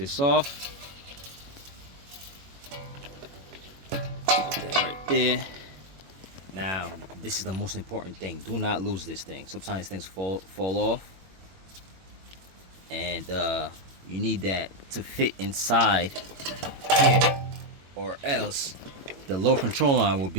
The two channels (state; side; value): late; left; 21 ms